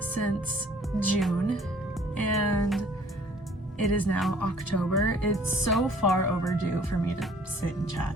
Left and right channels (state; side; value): normal; both; correlation 0.55